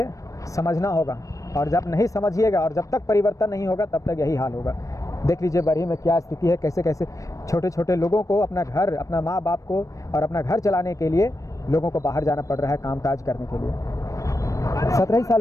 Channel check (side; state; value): right; late; 0.16 ms